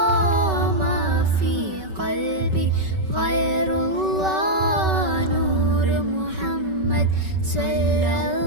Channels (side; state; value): left; late; 5.3 ms